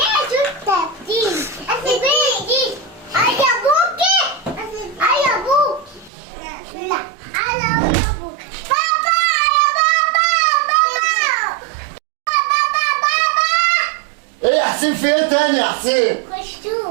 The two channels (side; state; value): left; drops out; at 6.1 s